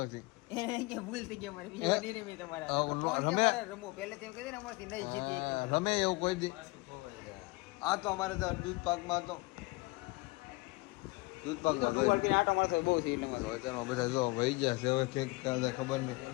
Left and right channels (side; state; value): right; quieter; 23.7 dB